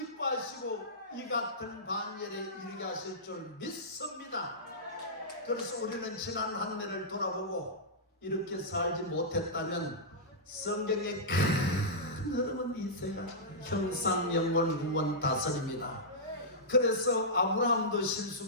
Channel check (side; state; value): both; normal; correlation -0.14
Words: 이 같은 반열에 이르게 하실 줄 믿습니다. 그래서 우리는 지난 한 해를 돌아보고 이렇게 살지 못했다면 성경의 큰 흐름은 이세가 형상, 영원, 구원, 다스립니다. 그래서 아브라함도